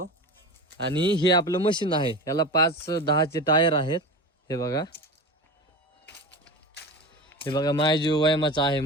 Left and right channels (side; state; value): both; normal; correlation 0.28